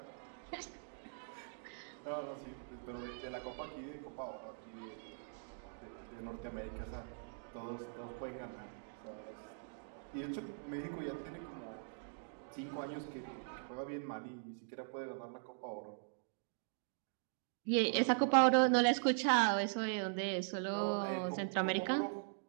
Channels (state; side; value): silent; left; digital silence